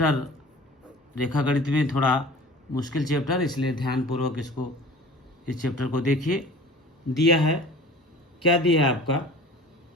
रेखा गणित में थोड़ा मुश्किल चैप्टर, इसलिए ध्यानपूर्वक इस चैप्टर को देखिए। दिया है, क्या दिया है आपका,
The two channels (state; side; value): normal; both; correlation 0.42